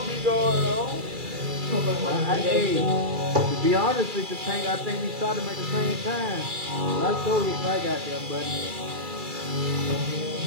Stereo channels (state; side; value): late; left; 2.3 ms